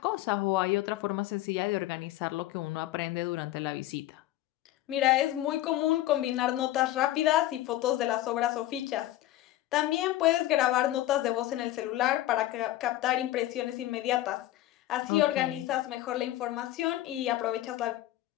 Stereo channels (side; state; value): right; quieter; 14.9 dB